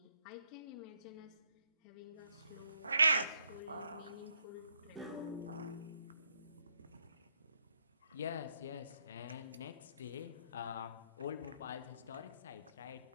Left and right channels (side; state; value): both; inverted; correlation -0.74